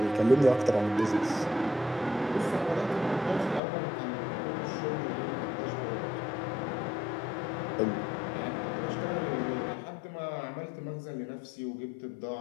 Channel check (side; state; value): right; drops out; at 3.6 s